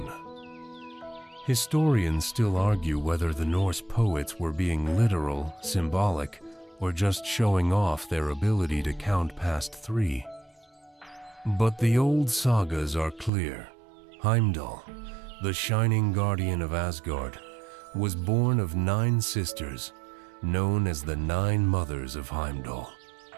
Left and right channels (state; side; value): drops out; left; at 13.3 s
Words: Historians still argue whether the Norse poets were being literal, symbolic, or just showing off their ability to count past 3. But the old sagas are clear. Heimdall, the shining guardian of Asgard, was born of 9 sisters, known as the 9 mothers of Heimdall.